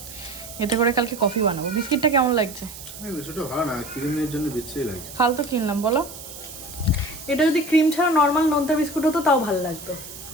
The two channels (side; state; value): right; noise; hiss, 14 dB below the sound